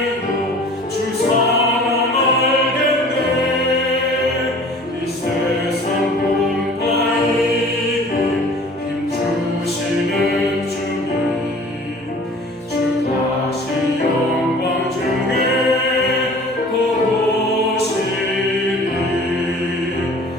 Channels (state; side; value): normal; both; correlation 0.47